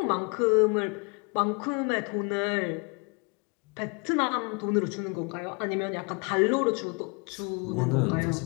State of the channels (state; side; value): quieter; right; 33.1 dB